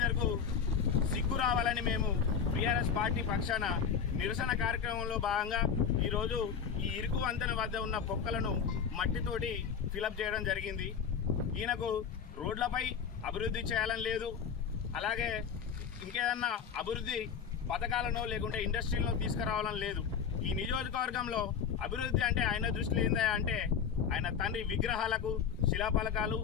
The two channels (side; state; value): right; quieter; 7.0 dB